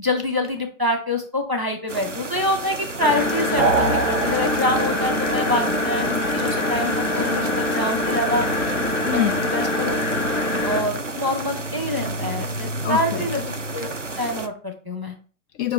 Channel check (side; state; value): left; late; 1.0 ms